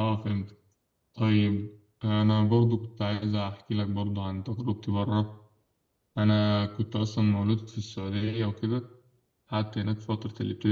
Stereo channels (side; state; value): both; identical; correlation 1.00